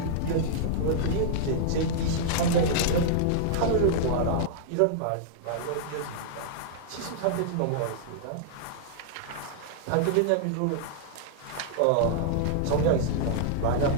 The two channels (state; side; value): different; both; correlation -0.01